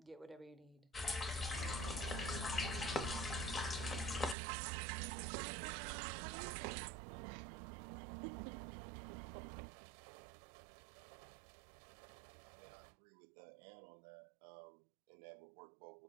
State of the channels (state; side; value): drops out; left; at 4.4 s